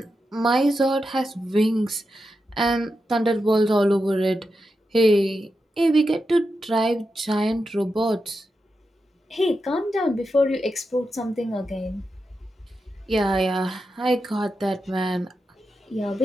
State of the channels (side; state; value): both; normal; correlation 0.88